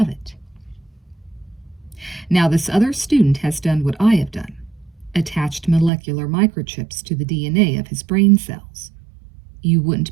Now, this other student has done what I have done, attached molecular microchips to the DNA of his brain cells. You wouldn't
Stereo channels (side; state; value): left; drops out; at 5.9 s